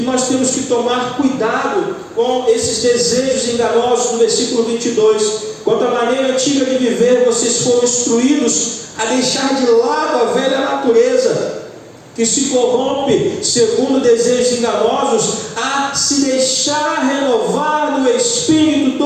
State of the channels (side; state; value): both; identical; correlation 1.00